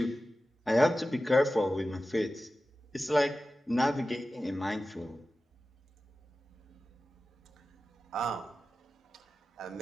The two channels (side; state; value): both; normal; correlation 0.94